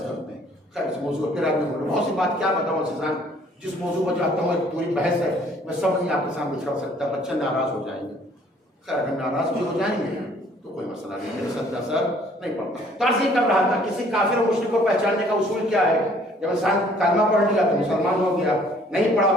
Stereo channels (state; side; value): normal; both; correlation 0.59